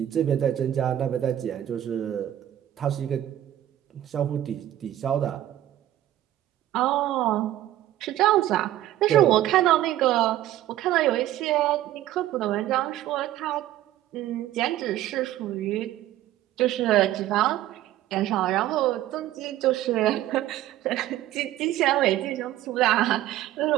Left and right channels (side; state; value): left; quieter; 13.3 dB